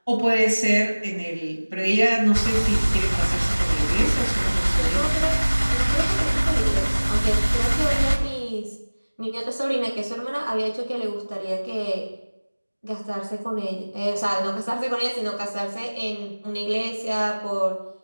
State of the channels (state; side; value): inverted; both; correlation -1.00